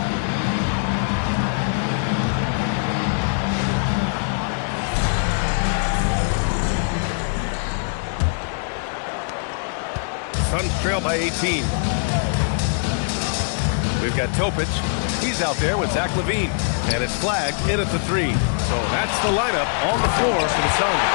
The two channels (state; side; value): silent; right; digital silence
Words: Suns trail by 18. We've got Topic. He's out there with Zach LaVine. And it's flagged in at the three. So that's the lineup on the floor for the Suns.